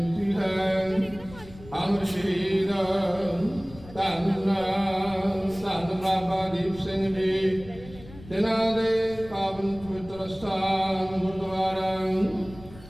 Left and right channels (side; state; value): left; noise; rumble, 18 dB below the sound